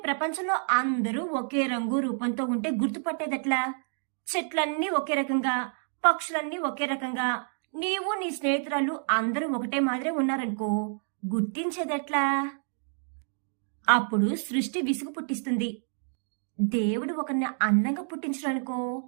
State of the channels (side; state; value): left; silent; 59 dB below the other